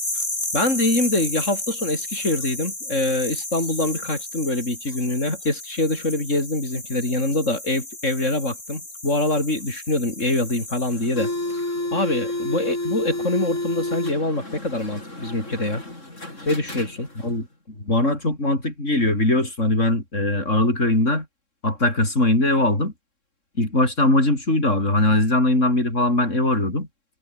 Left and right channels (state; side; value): late; right; 3.6 ms